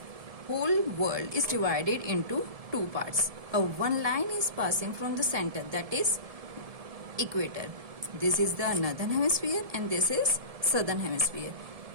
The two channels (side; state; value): left; late; 1.7 ms